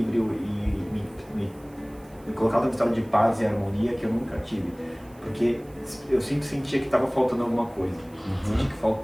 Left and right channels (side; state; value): right; noise; hiss, 28 dB below the sound